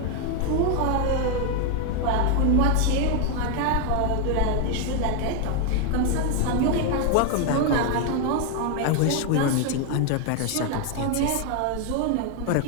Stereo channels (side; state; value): both; different; correlation 0.01